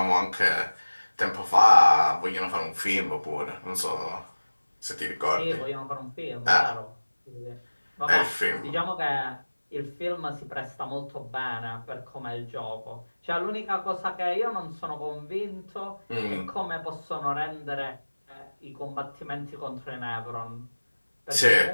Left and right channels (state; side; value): inverted; both; correlation -1.00